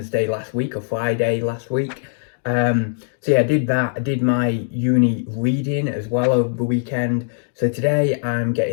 last week or Friday last week. So yeah, I did that. I did my uni reading as well over the weekend. So today I'm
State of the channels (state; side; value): silent; right; 65 dB below the other